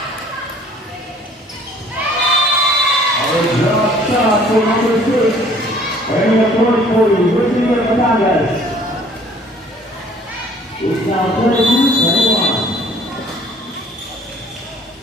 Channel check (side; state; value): both; normal; correlation 0.56